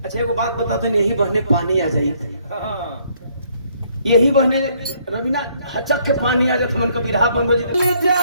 अच्छा एगो बात बता दो यही बहने पानी आ जाई यही बहने रवीना हचक के पानी आ जात मन को बिरहा बंद हो जी जा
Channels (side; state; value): both; inverted; correlation -0.67